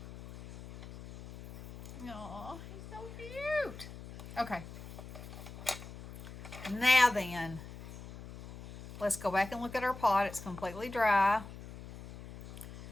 Aw, he's so cute. Okay. Now then, let's go back and look at our pot. It's completely dry.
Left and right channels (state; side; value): noise; left; hum, 13 dB below the sound